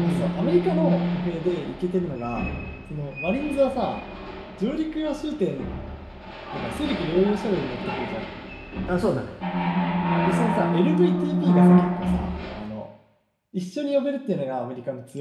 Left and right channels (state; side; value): identical; both; correlation 1.00